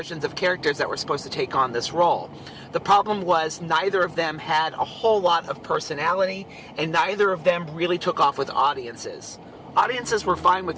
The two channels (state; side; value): identical; both; correlation 1.00